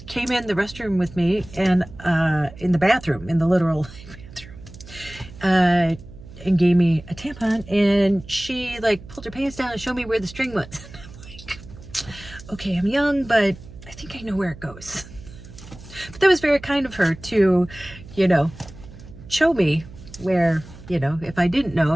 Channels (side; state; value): right; noise; hum, 17 dB below the sound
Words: came in the restroom with me and in the bathroom, in the literal bathroom, and gave me a tampon, and she like pulled her pants down and showed me where the string was. I'm like, okay, I'm young, but I think I know where it goes. But that was very kind of her to, you know, show me where, you know, if I didn't know,